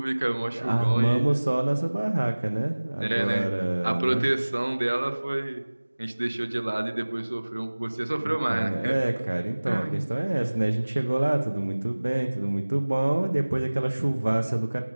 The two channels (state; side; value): inverted; both; correlation -1.00